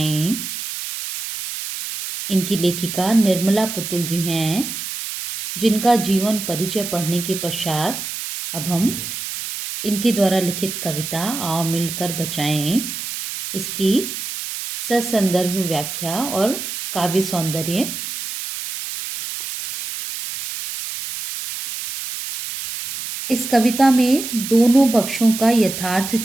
इनकी लेखिका निर्मला पुतुल जी हैं, जिनका जीवन परिचय पढ़ने के पश्चात अब हम इनके द्वारा लिखित कविता आओ मिलकर बचाएं इसकी ससंदर्भ व्याख्या और काव्य सौंदर्य इस कविता में दोनों पक्षों का यथार्थ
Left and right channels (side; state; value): right; noise; hiss, 7 dB below the sound